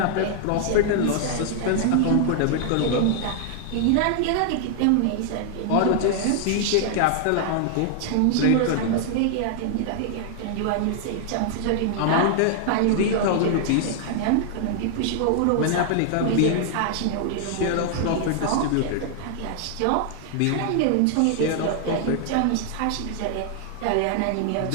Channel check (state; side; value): different; both; correlation 0.00